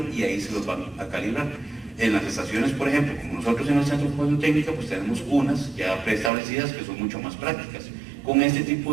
y ahí se los van a calibrar. En las estaciones, por ejemplo, como nosotros en el Centro de Formación Técnica, pues tenemos unas ya preestablecidas que son mucho más prácticas. Con este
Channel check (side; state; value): left; drops out; at 6.3 s